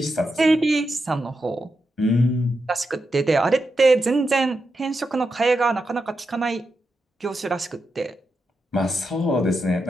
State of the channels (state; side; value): normal; both; correlation 0.87